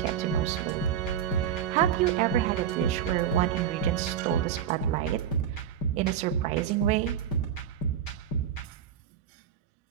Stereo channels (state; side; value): quieter; left; 9.1 dB